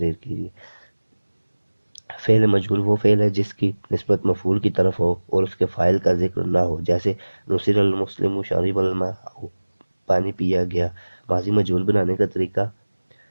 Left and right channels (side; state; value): both; inverted; correlation -1.00